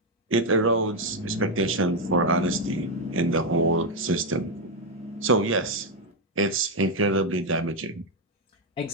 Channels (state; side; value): normal; both; correlation 0.04